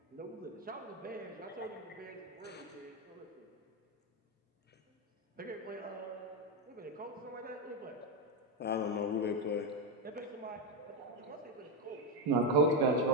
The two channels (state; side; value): normal; both; correlation 0.08